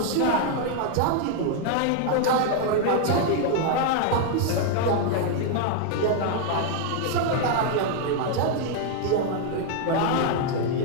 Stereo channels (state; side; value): different; both; correlation 0.00